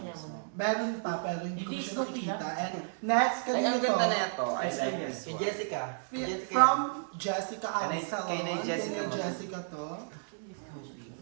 mo? Meron pa pero hindi ko Hindi, siya sorry, nakikita. ha? And next, Ay, kanina ang to. ganda na ito. I Ay, like ay, this kay one. Jessica. From Jessica Kay Absalon. Nay Jessica Kay mo. Jessica to.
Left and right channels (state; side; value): silent; left; digital silence